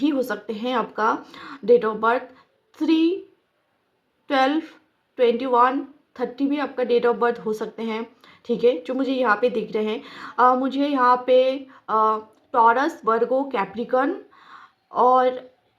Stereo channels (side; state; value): both; identical; correlation 1.00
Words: हो सकते हैं आपका डेट ऑफ बर्थ, 3, 12, 21, 30 भी आपका डेट ऑफ बर्थ हो सकते हैं, ठीक है, जो मुझे यहाँ पे दिख रहे हैं। मुझे यहाँ पे टॉरस, वर्गो, कैप्रिकॉन और